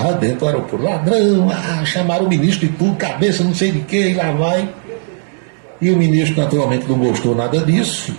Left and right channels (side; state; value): left; silent; 61 dB below the other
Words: dentro do aeroporto. Ladrão, chamaram o ministro de tudo, cabeça não sei de quê, e lá vai. E o ministro naturalmente não gostou nada disso,